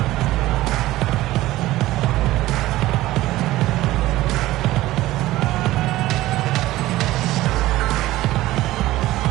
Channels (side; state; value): left; quieter; 16.6 dB